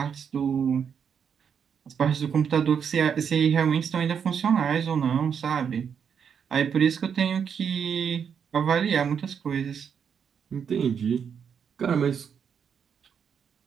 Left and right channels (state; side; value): quieter; left; 7.3 dB